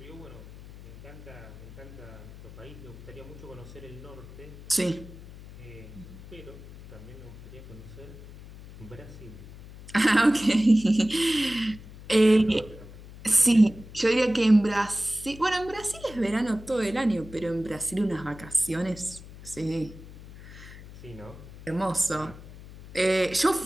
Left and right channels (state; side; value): noise; left; hum, 16 dB below the sound